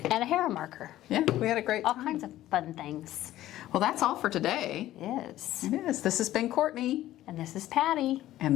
and a Hera marker. Yeah, we had a great All time. kinds of fun things. Well, that's all for today. Yes. It is. This has been Kourtney. And this is Patty.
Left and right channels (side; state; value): right; quieter; 14.2 dB